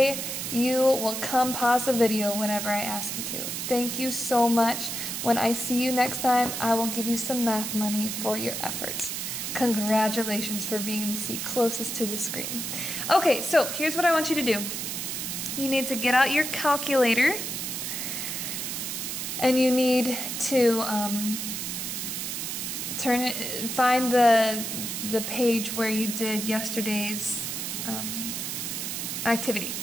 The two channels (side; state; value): right; noise; hiss, 4 dB below the sound